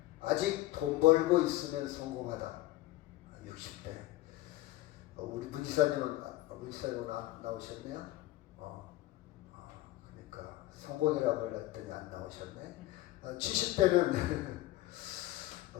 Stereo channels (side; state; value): right; quieter; 16.9 dB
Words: 아직 돈 벌고 있으면 성공하다. 60대. 우리 문지사님은 나오셨네요. 그러니까 성공이라고 했더니 안 나오셨네. 70대는